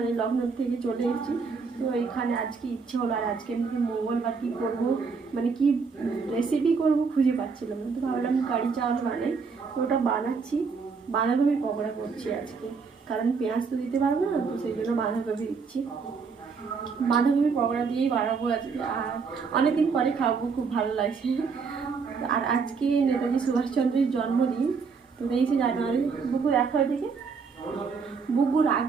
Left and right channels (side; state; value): left; quieter; 5.2 dB